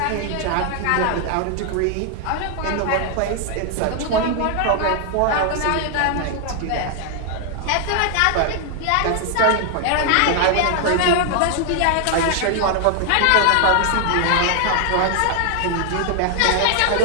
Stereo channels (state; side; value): different; both; correlation 0.00